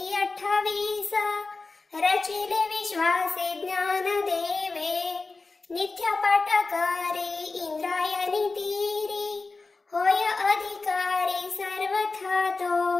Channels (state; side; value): quieter; right; 3.8 dB